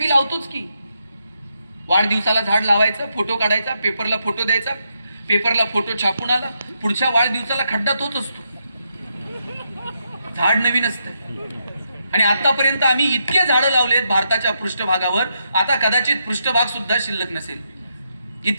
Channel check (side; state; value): both; inverted; correlation -0.81